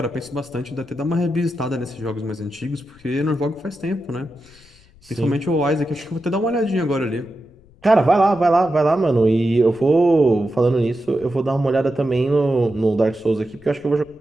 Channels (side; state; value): left; noise; rumble, 28 dB below the sound